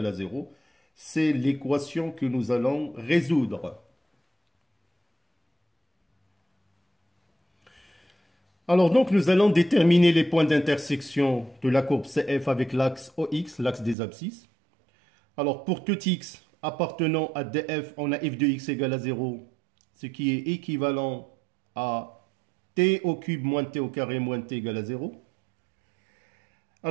à 0. C'est l'équation que nous allons résoudre. Alors donc nous allons déterminer les points d'intersection de la courbe CF avec l'axe OX, l'axe des abscisses. Alors pour tout x appartenant à df, on a f de x égale à 0, ce qui est équivalent à t au cube moins t au carré moins t égale à 0.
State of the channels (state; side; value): drops out; left; at 14.0 s